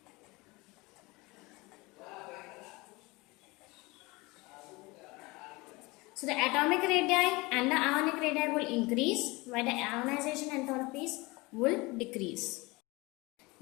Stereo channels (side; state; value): right; quieter; 23.8 dB